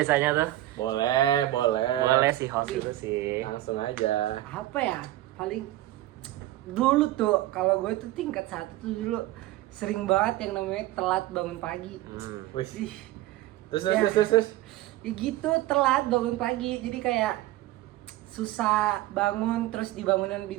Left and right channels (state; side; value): quieter; left; 15.7 dB